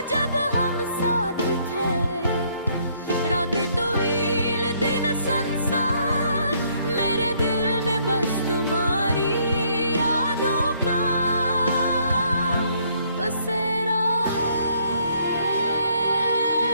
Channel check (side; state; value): both; inverted; correlation -0.66